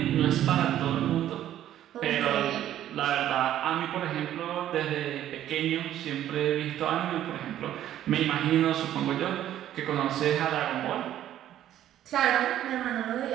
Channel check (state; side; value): quieter; left; 11.9 dB